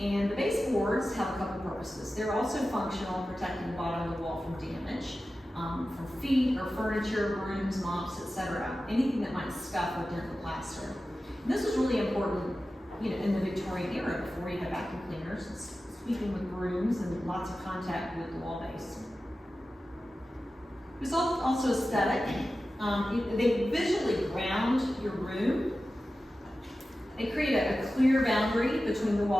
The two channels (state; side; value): normal; both; correlation 0.94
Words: the baseboards have a couple purposes. They're also functional, protecting the bottom of the wall from damage, from feet or furniture, brooms, mops, etc. Anything that might scuff or dent the plaster. And this was really important, in the Victorian era, before you had vacuum cleaners, sweeping with brooms and lots of contact with the wall base. It was also aesthetic. They visually ground your room. They create a clear boundary between the